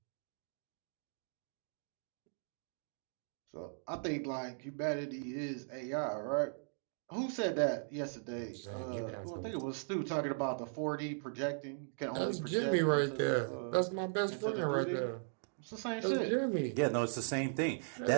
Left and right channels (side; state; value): left; silent; digital silence